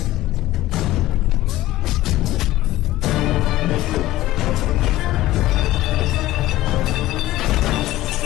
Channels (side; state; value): right; quieter; 15.9 dB